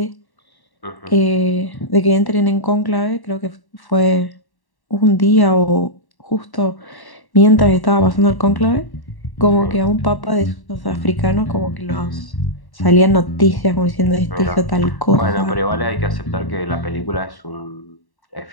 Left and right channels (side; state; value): right; late; 1.1 ms